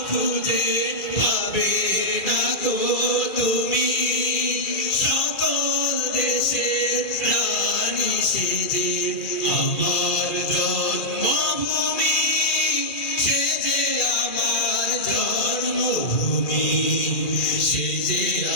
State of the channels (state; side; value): late; right; 2.4 ms